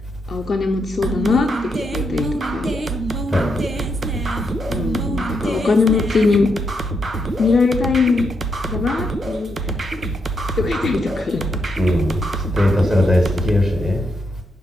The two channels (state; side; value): normal; both; correlation 0.81